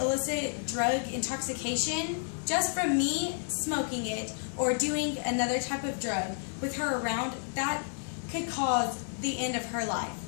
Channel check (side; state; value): right; silent; 57 dB below the other